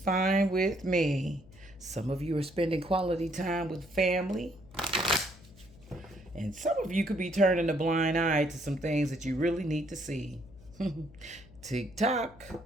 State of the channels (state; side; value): noise; left; hum, 22 dB below the sound